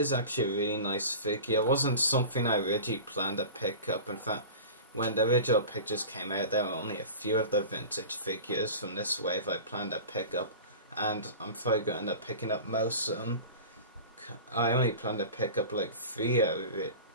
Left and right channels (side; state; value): both; inverted; correlation -0.35